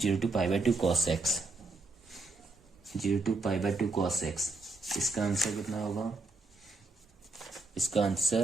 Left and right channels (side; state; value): left; quieter; 3.4 dB